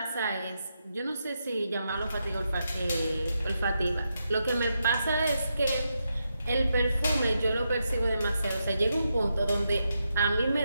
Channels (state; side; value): inverted; both; correlation -0.84